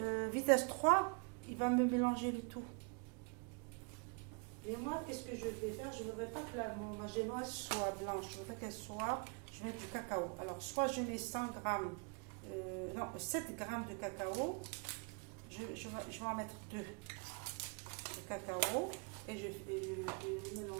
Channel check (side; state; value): left; quieter; 36.5 dB